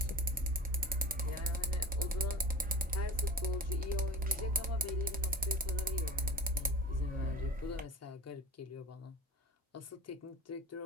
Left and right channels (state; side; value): normal; both; correlation 0.35